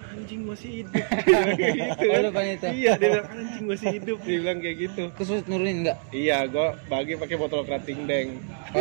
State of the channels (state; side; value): silent; left; 60 dB below the other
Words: anjing masih hidup. Dia bilang kayak gitu Oh, kan. depan itu? Iya, dia bilang anjing masih hidup. Dia bilang kayak gitu. Terus lu nurunin enggak? Iya, gue bagi pakai botol kerating deng.